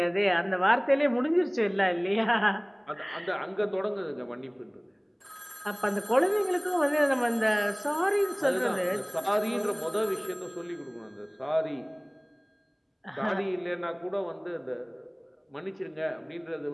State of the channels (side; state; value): both; identical; correlation 1.00